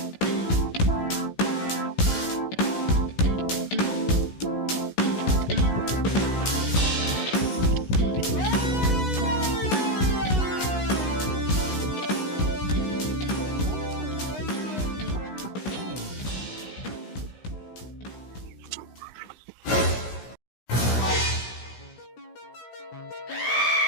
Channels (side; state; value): right; late; 16 ms